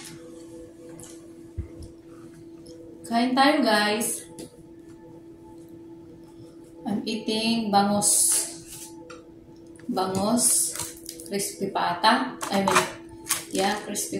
Kain tayo guys. I'm eating bangus. Crispy pata.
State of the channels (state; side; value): identical; both; correlation 1.00